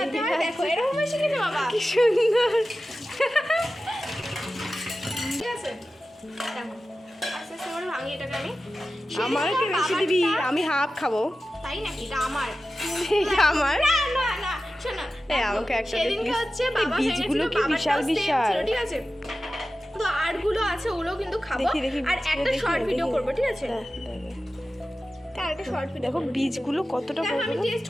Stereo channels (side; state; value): both; normal; correlation 0.94